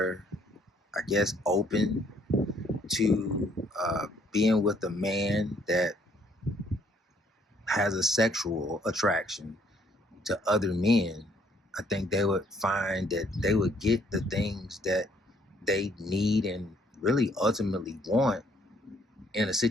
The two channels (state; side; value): normal; both; correlation 0.65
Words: I guess, open to being with a man that has a sexual attraction to other men, I think they would find that they would get the things that they need and really ultimately want in a